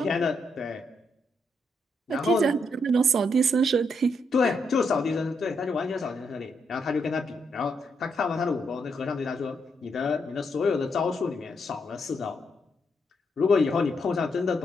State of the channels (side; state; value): both; normal; correlation 0.78